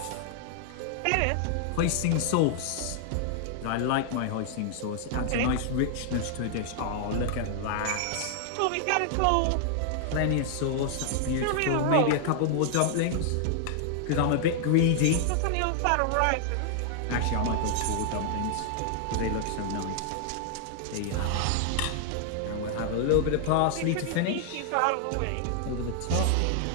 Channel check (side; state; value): both; different; correlation 0.00